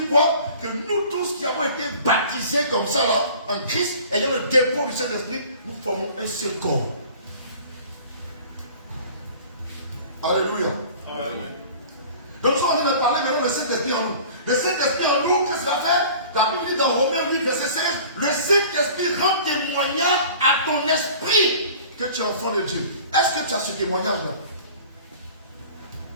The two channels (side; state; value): both; inverted; correlation -0.45